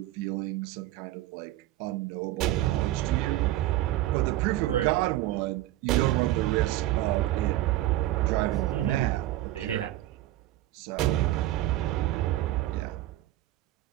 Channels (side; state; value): left; quieter; 15.4 dB